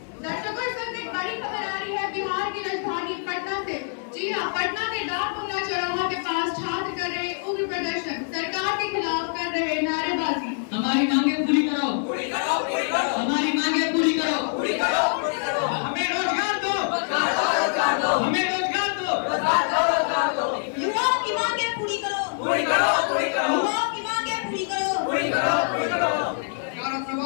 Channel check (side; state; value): right; silent; 62 dB below the other